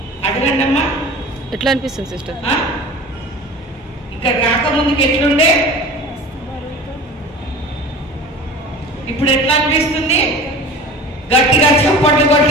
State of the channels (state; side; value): normal; both; correlation 0.39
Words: అడగండి అమ్మా. ఎట్లా అనిపిస్తుంది సిస్టర్? ఇక్కడ రాకముందుకు ఎట్లుండే, ఇప్పుడు ఎట్లా అనిపిస్తుంది? గట్టిగా చప్పట్లు